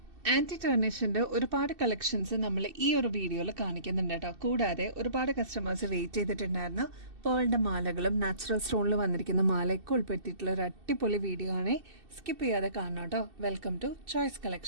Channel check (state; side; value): late; left; 2.7 ms